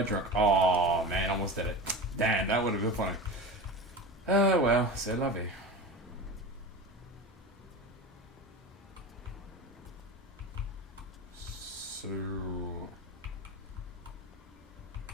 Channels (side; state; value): both; normal; correlation 0.28